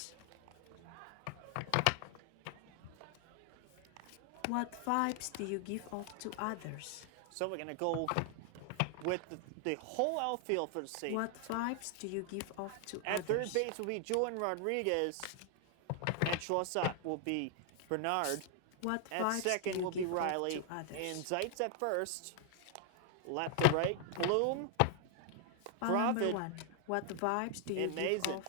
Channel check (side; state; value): both; different; correlation 0.00